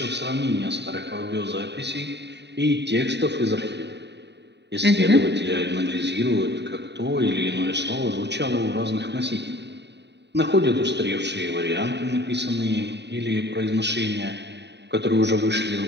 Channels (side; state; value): left; late; 0.50 ms